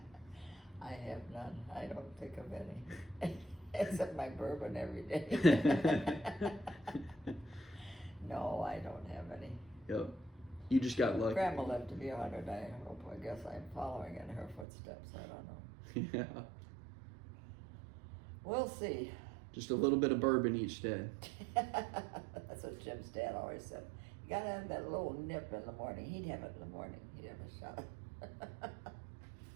I have none. I don't think of any. Except my bourbon every day. No, I don't have any. Yep. You just got lucky. Grandma lived to be 100. I guess I'm following in her footsteps. I don't know. Yeah. We'll see. Just a little bit of bourbon each day. That's what Jim's dad always said. You gotta have that little nip in the morning. He'd have it in the morning. He'd have a shot.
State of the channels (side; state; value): left; drops out; at 14.7 s